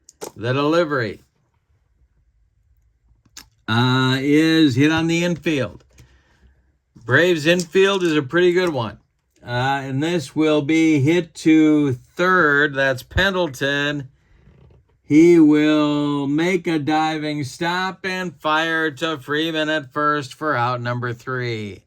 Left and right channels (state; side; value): identical; both; correlation 1.00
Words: The delivery is hit on the infield. Braves infield is a pretty good one. And this will be hit to third. That's Pendleton. He will make a diving stop and fire to Freeman at first for out number 3.